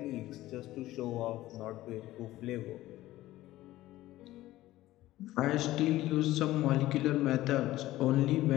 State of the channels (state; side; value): quieter; right; 16.0 dB